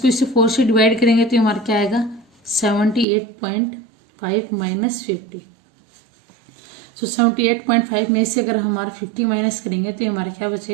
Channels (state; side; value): drops out; left; at 3.1 s